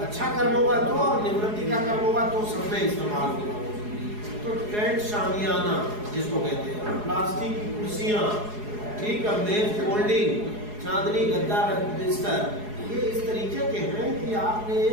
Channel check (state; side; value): late; left; 4.8 ms